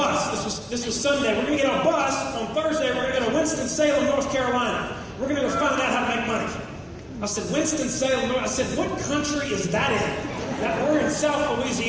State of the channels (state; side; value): identical; both; correlation 1.00